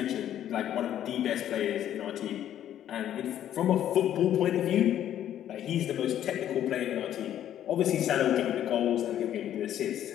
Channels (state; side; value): quieter; right; 11.1 dB